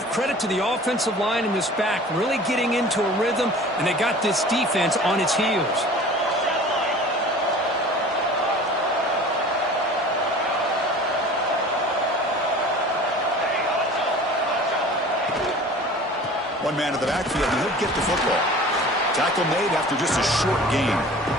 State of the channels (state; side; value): normal; both; correlation 0.43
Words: credit to the offensive line in this back, really getting into a rhythm, and they got this defense on its heels. One man in the backfield, and he'll get the football. Tackle made after just a short gain.